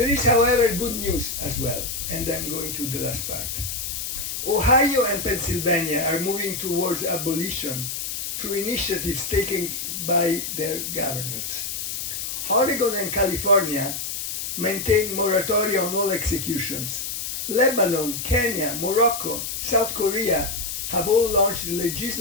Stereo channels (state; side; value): noise; left; hiss, 4 dB below the sound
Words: is, however, good news as well, and I'm going to the last part. Ohio and Pennsylvania are moving towards abolition through initiatives taken by their governors. Oregon and California maintain moratoria on all executions. Lebanon, Kenya, Morocco, South Korea have all launched